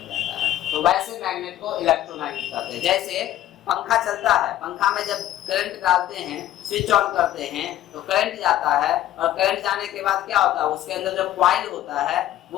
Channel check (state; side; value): quieter; right; 13.3 dB